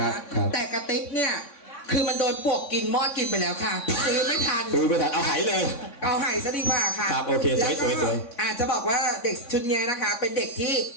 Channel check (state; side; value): late; right; 3.6 ms